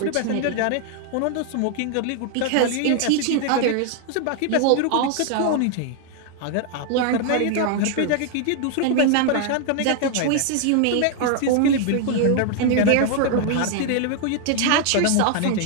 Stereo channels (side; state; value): both; different; correlation 0.00